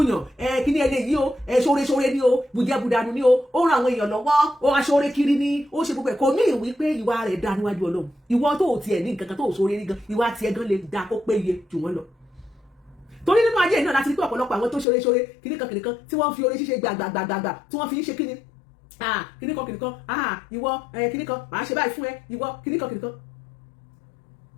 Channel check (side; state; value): right; drops out; at 14.9 s